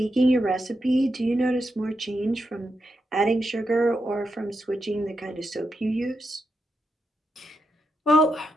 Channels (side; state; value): both; normal; correlation 0.85